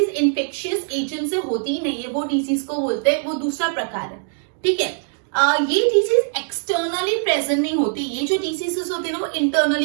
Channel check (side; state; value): left; silent; digital silence